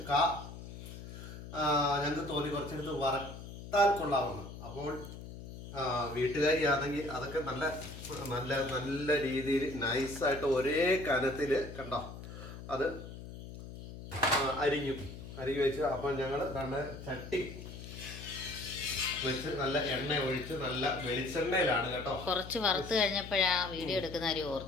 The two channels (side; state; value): left; noise; hum, 12 dB below the sound